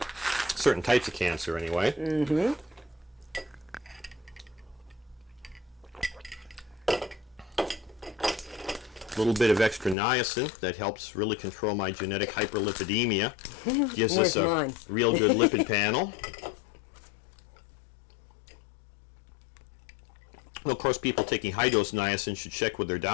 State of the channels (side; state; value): right; drops out; at 10.0 s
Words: Certain types of cancer, anyway. Mm-hmm. A little bit of extra niacin that helps really control my genetic hyperlipidemia. Gives us a real good lipid panel. Well, of course, people taking high-dose niacin should check with their